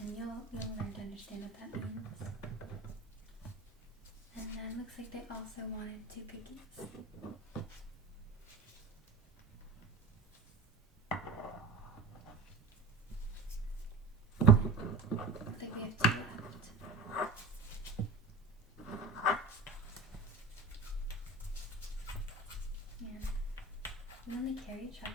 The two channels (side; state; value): left; quieter; 3.7 dB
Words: you'll learn to understand what that means. And then looks like they also wanted 2 cookies. I think we have 2 left. Yeah. We only carry